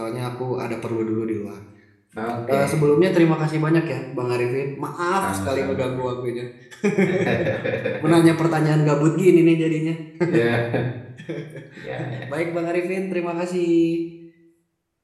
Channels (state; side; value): identical; both; correlation 1.00